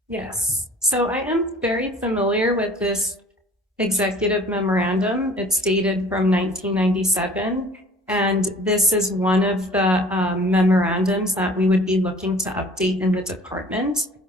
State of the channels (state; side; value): normal; both; correlation 0.49